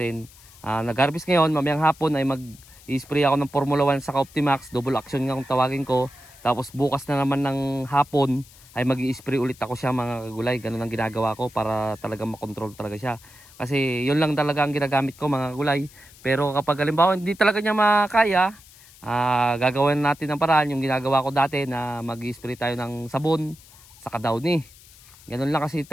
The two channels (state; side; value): noise; left; hiss, 23 dB below the sound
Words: Nag-harvest ngayon, mamayang hapon ay mag-i-spray ako ng Formula 1 sa Optimax, double action nga kung tawagin ko. Tapos bukas na naman ng hapon ay mag-i-spray ulit ako siya mga kagulay. Ganun ang ginagawa ko para talaga makontrol talaga siya. Kasi yun lang talaga ang ginagamit ko mga kagulay. Pero kapag halimbawa hindi talaga niya makaya, gagawin natin ng paraan yung ginagawa ko dati na mag-i-spray tayo ng sabon sa Downy. Ganun lang, kasi